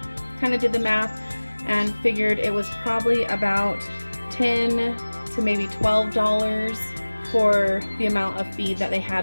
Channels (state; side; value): inverted; both; correlation -1.00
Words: kind of did the math and figured it was probably about $10 to maybe $12 for the amount of feed that they